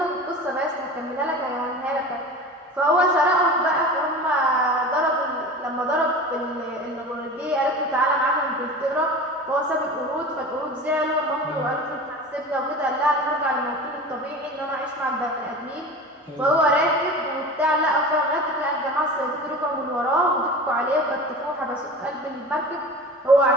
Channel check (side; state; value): both; normal; correlation 0.34